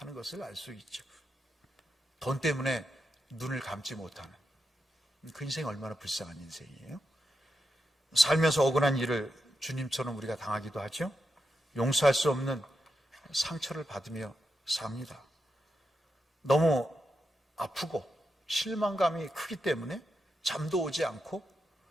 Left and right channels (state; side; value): normal; both; correlation 0.86